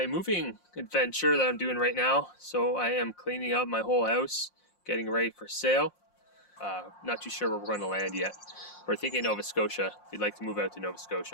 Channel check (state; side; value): late; right; 5.6 ms